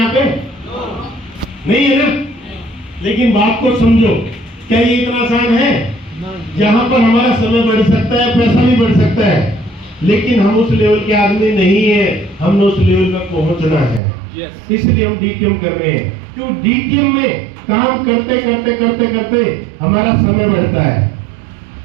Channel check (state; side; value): drops out; left; at 14.0 s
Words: पे? नहीं है ना? लेकिन बात को समझो, क्या ये इतना आसान है? यहाँ पर हमारा समय बढ़ सकता है, पैसा भी बढ़ सकता है, लेकिन हम उस लेवल के आदमी नहीं है, हमने उस लेवल पर पहुंचना है। इसलिए हम डीटीएम कर रहे हैं, क्यों? डीटीएम में काम करते करते करते करते हमारा समय बढ़ता है।